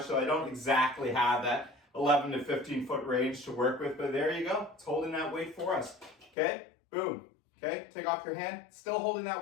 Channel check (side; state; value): right; drops out; at 6.3 s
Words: so I don't exactly have that 11 to 15 foot range to work with, but there you go. It's holding that weight for us, okay? Boom, okay? Take off your hand, still holding